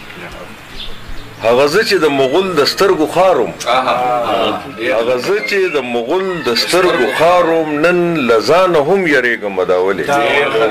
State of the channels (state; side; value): identical; both; correlation 1.00